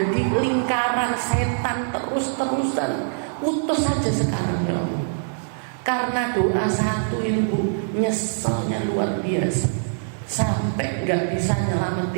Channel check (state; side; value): silent; left; digital silence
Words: lingkaran setan terus-terusan. Putus saja sekarang ya Allah. Karena doa satu itu Bu, nyeselnya luar biasa, sampai gak bisa